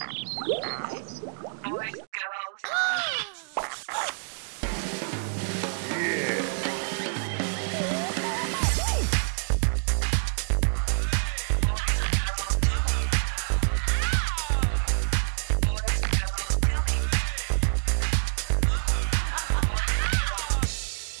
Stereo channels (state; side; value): silent; left; digital silence